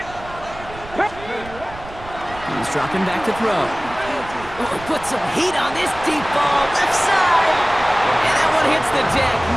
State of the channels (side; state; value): right; noise; rumble, 16 dB below the sound